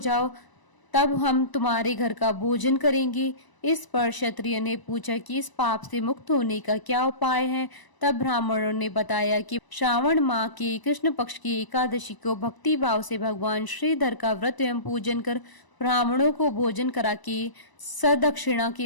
तब हम तुम्हारे घर का भोजन करेंगे। इस पर क्षत्रिय ने पूछा कि इस पाप से मुक्त होने का क्या उपाय है। तब ब्राह्मणों ने बताया कि श्रावण माह के कृष्ण पक्ष की एकादशी को भक्ति भाव से भगवान श्रीधर का व्रत एवं पूजन कर ब्राह्मणों को भोजन करा के सदक्षिणा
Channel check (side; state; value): right; late; 1.0 ms